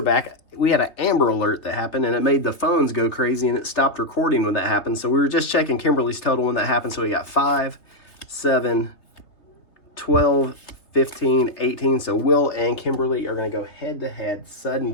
back. We had an Amber Alert that happened, and it made the phones go crazy, and it stopped recording when that happened. So we were just checking Kimberly's total when that happened. So we got 5, 7, 12, 15, 18. So Will and Kimberly are going to go head-to-head, sudden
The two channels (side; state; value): right; late; 3.2 ms